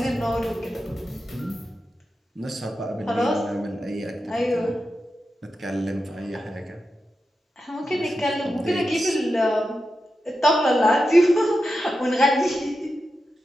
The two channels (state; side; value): normal; both; correlation 0.90